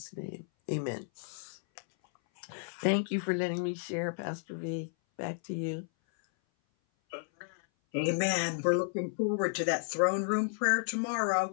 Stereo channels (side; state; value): right; silent; 56 dB below the other